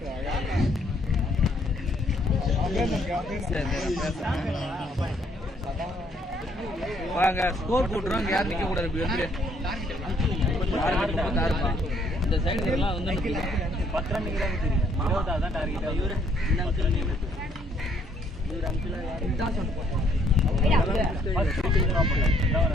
வாங்க ஸ்கோர் போட்டுறோம், யாரும் நிக்க கூடாது. இப்படி வந்து இந்த சைடு எல்லாம் வந்து 10 ரன் தான் டார்கெட். இவரு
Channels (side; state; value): both; normal; correlation 0.67